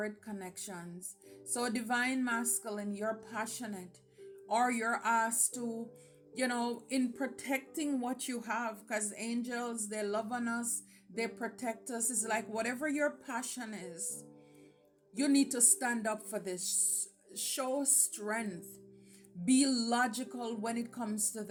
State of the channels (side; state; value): both; identical; correlation 1.00